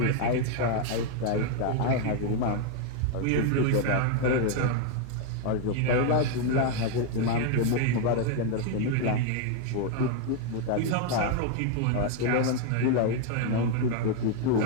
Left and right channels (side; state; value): both; different; correlation 0.01